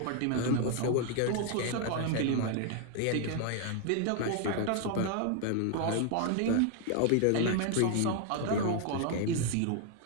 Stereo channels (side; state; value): both; different; correlation 0.00